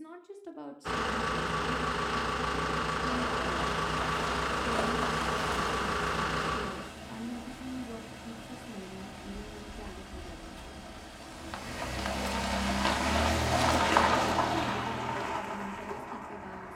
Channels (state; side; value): identical; both; correlation 1.00